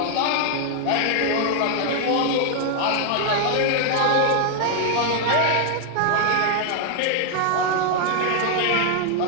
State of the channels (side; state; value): both; different; correlation 0.00